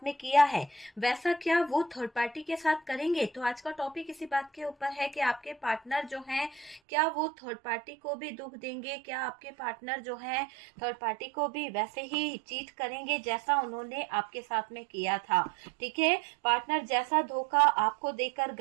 में किया है, वैसा क्या वो थर्ड पार्टी के साथ करेंगे। तो आज का टॉपिक इसी बात के ऊपर है कि आपके पार्टनर जो हैं, क्या वो थर्ड पार्टी को भी दुख देंगे, क्या आपके पार्टनर जो हैं थर्ड पार्टी को भी वैसे ही चीट करेंगे जैसा उन्होंने आपके साथ में किया था। ठीक है, पार्टनर जैसा धोखा आपको देकर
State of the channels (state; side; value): drops out; left; at 6.8 s